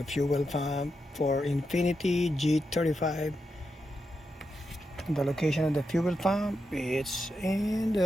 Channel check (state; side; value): normal; both; correlation 0.86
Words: fuel pump for Infinity G35, the location of the fuel pump, it's in